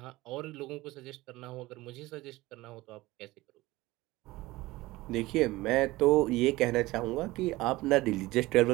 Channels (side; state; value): left; quieter; 19.3 dB